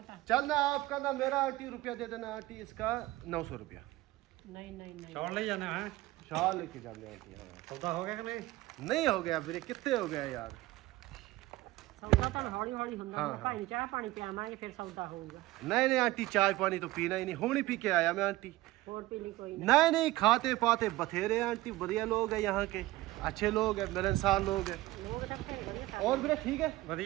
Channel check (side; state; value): left; quieter; 18.2 dB